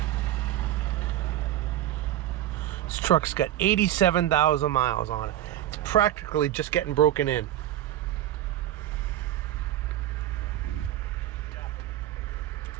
This truck's got 87,000 miles on it. It's practically just getting broken in.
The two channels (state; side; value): quieter; left; 12.7 dB